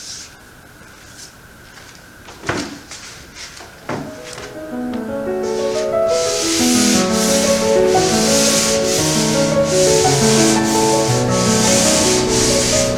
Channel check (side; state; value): both; identical; correlation 1.00